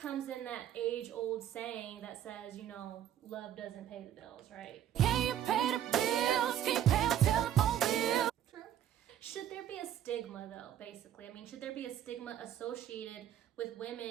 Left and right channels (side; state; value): left; quieter; 10.7 dB